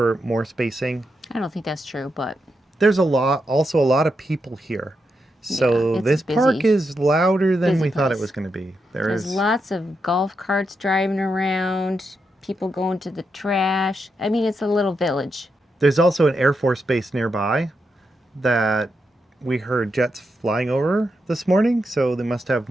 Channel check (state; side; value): normal; both; correlation 0.85